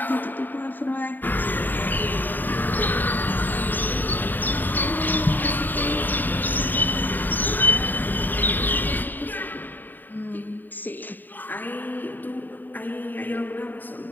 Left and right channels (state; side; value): late; right; 0.089 ms